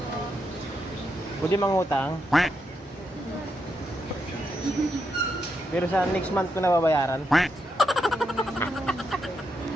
Pwede mangutang? Pero sa next month ko na babayaran.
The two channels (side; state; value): both; normal; correlation 0.82